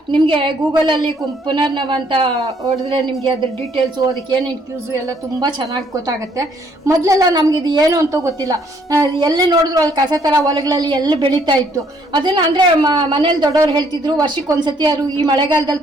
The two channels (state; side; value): normal; both; correlation 0.66